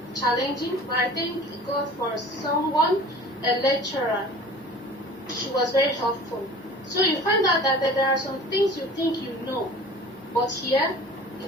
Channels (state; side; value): normal; both; correlation 0.43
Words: challenging, but I thank God for someone, a lecturer. She was very helpful. So you find out that there are some things you think you know, but here